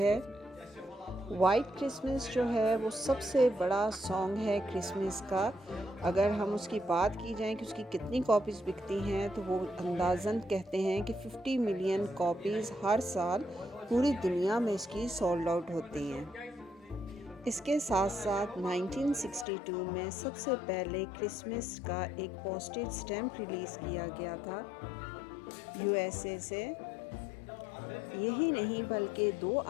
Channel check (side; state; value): right; drops out; at 19.5 s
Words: वाइट क्रिसमस जो है वो सबसे बड़ा सॉन्ग है क्रिसमस का। अगर हम उसकी बात की जाए कि उसकी कितनी कॉपीज़ बिकती हैं तो वो अंदाज़न कहते हैं कि 50 मिलियन कॉपीज़ हर साल पूरी दुनिया में इसकी सोल्ड आउट होती हैं। इसके साथ साथ 1962 में सबसे पहले क्रिसमस का एक पोस्टेज स्टैम्प रिलीज़ किया गया था यूएसए से। यही नहीं बल्कि 2